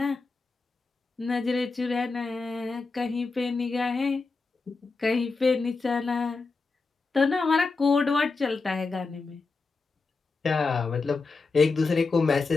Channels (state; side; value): quieter; right; 4.1 dB